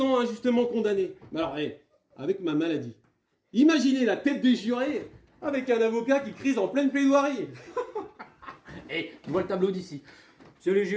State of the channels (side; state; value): both; identical; correlation 1.00